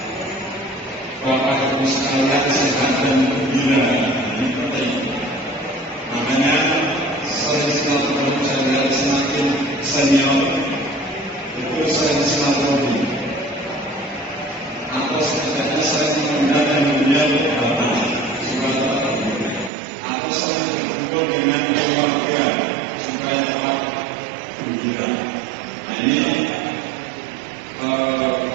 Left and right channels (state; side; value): drops out; left; at 19.7 s